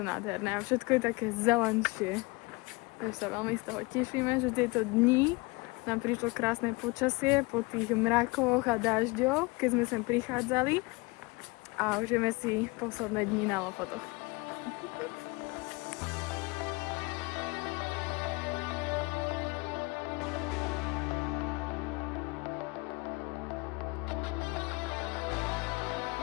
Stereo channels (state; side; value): quieter; right; 25.5 dB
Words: nádherné a všetko je také zelenšie. Takže sa veľmi z toho tešíme, že tieto dni nám prišlo krásne počasie po tých mrakoch a dažďoch, keď sme sem prichádzali a užijeme si posledné dni na Lofotoch.